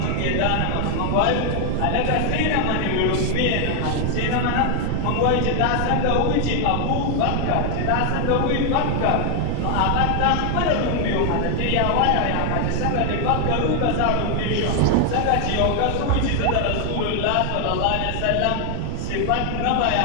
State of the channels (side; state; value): both; different; correlation 0.00